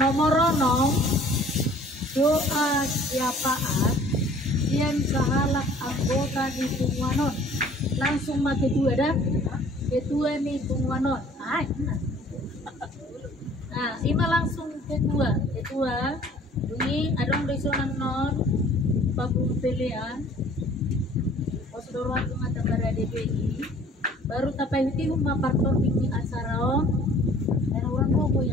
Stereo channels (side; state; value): both; normal; correlation 0.52